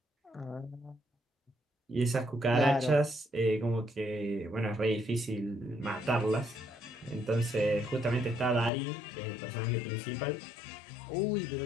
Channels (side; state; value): right; drops out; at 8.7 s